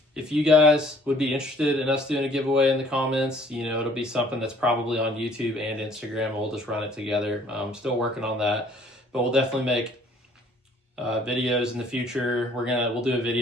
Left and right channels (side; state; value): both; normal; correlation 0.58